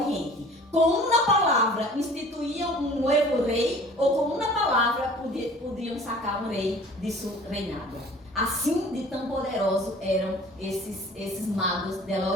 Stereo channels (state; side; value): normal; both; correlation 0.47